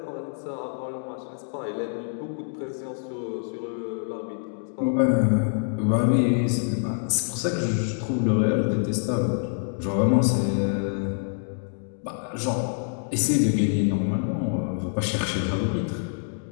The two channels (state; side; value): silent; right; digital silence